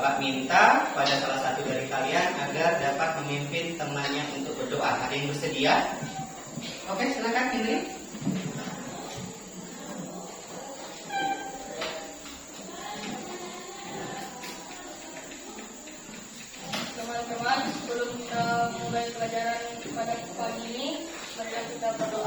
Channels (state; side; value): identical; both; correlation 1.00